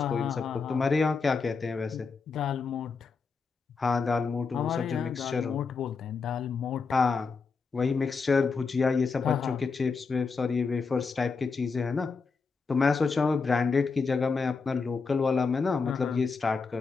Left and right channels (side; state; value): right; quieter; 4.8 dB